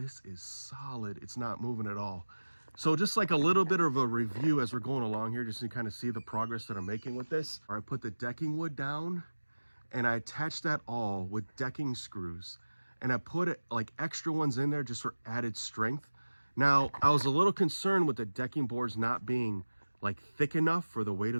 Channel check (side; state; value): both; inverted; correlation -1.00